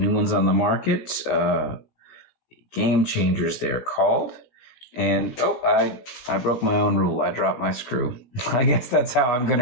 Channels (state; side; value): late; right; 16 ms